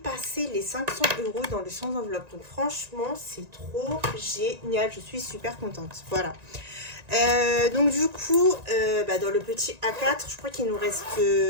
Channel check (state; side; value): late; left; 1.9 ms